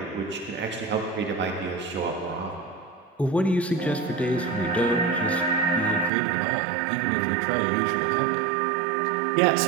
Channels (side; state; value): left; drops out; at 6.1 s